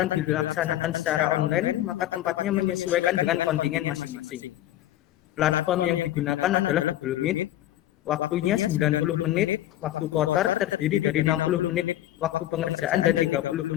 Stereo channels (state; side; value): quieter; right; 13.9 dB